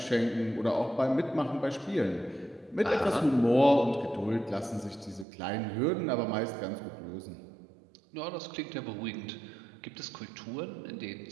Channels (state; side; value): drops out; left; at 5.2 s